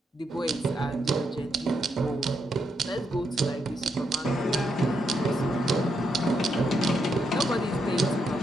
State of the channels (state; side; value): normal; both; correlation 0.80